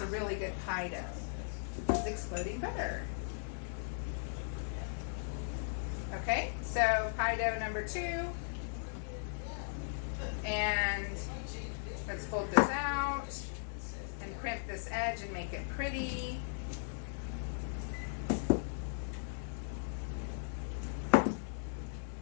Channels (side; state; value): right; silent; 53 dB below the other